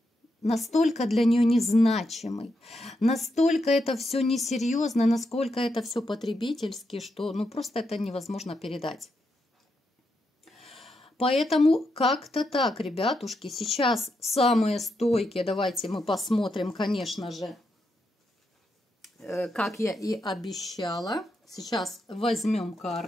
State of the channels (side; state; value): both; normal; correlation 0.83